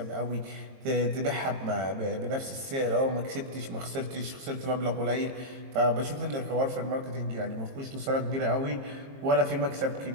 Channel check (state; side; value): late; left; 22 ms